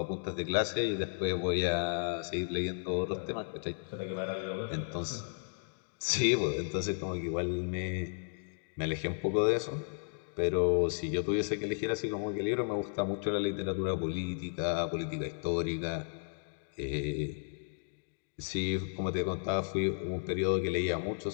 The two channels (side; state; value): right; silent; digital silence